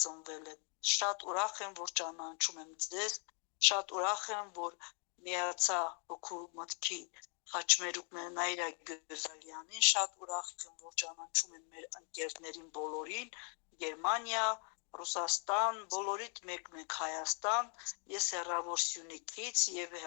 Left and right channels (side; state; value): right; quieter; 39.7 dB